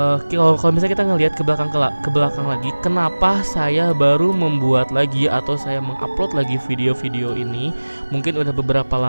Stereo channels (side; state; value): both; inverted; correlation -1.00